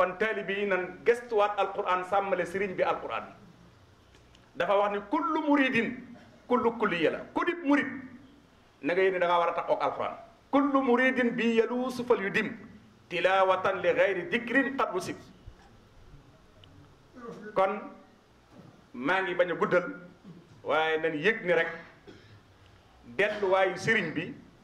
taalibe yi nan gestuwaat alquran sàmmale sëriñ bi alquran dafa wax ni kullu muridin kullu kulliya la ku dib murid na nga yéene da ngaa war a taxoog alquran kullu muridin bi yaluusu fal yu dim tilawatan li gayri dikrin qad wusib kon maa ngi bañ a guddal waaye nañ yëg ni rek delluwaayu sëriñ bi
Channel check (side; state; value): both; identical; correlation 1.00